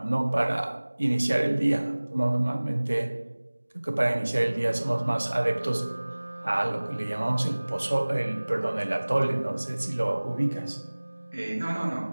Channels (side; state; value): both; inverted; correlation -1.00